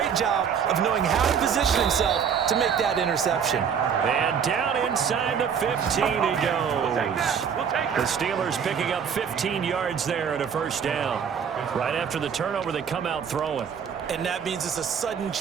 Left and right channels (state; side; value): quieter; left; 7.3 dB